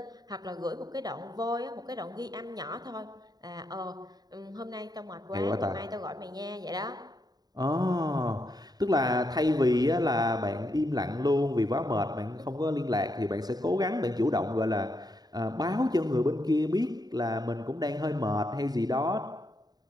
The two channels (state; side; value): late; left; 0.19 ms